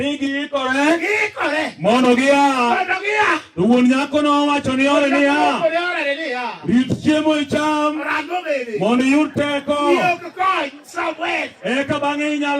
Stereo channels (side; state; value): both; identical; correlation 1.00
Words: giikore mondo gia. To wuon nyako nowacho ni ore niya. Rit chiemo icham mondo iyud teko. Eka bang'e